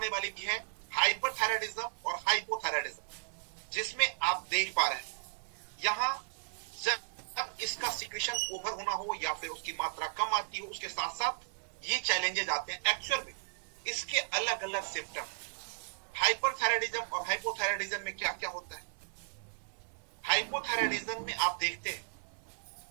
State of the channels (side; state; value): left; silent; 54 dB below the other